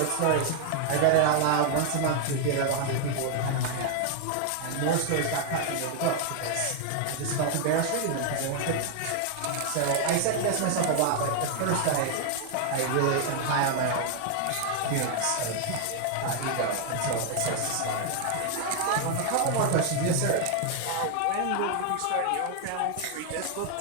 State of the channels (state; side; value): different; both; correlation 0.00